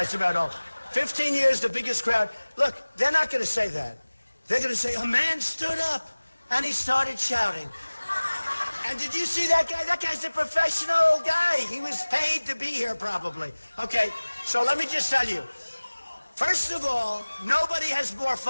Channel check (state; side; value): inverted; both; correlation -1.00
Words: about old. 15 years, the biggest crowd. Look, they're not going to say that. They're going to say, a man stood up, and he started shouting. And did you see that guy? That guy's a professional guy. He was paid to be here, probably. Okay, so let me just tell you. First of all, nobody has more